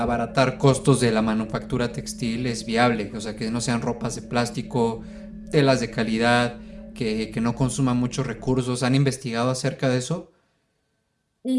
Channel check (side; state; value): both; identical; correlation 1.00